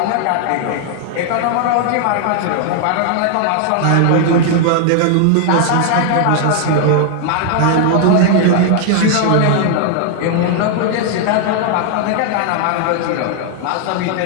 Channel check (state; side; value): different; both; correlation 0.00